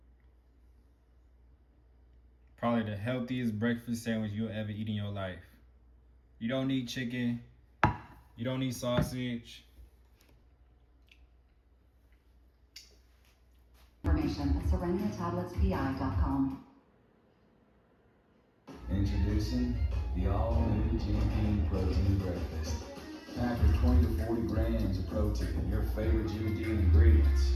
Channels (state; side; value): identical; both; correlation 1.00